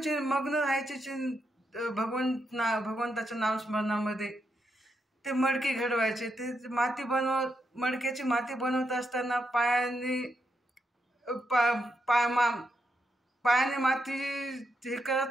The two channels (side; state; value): both; normal; correlation 0.82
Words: मग्न राहायचे भगवंताच्या नामस्मरणामध्ये. ते मडकी घडवायचे, ते मडक्याची माती बनवत असताना पायाने माती हे